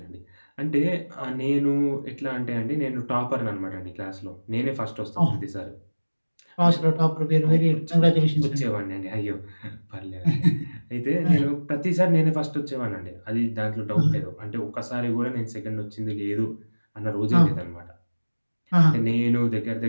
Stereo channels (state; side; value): inverted; both; correlation -1.00